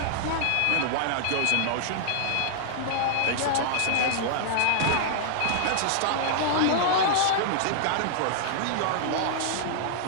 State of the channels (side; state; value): both; different; correlation -0.01